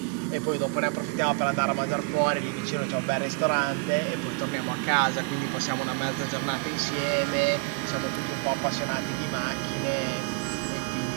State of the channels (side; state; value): left; quieter; 30.1 dB